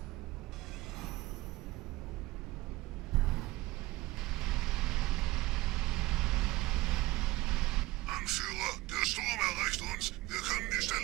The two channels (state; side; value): quieter; left; 19.3 dB